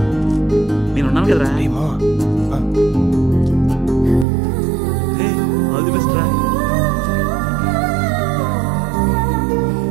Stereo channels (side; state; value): left; drops out; at 4.2 s